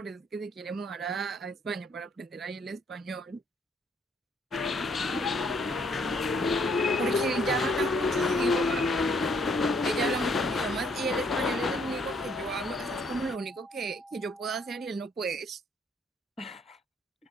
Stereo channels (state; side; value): normal; both; correlation 0.67